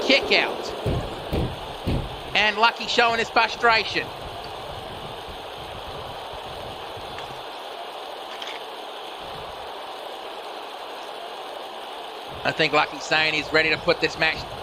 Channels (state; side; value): identical; both; correlation 1.00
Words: kick out. And Lucky showing his frustration. I think Lucky's saying he's ready to put this match